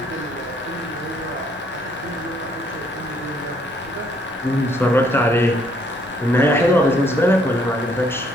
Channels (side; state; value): both; normal; correlation 0.67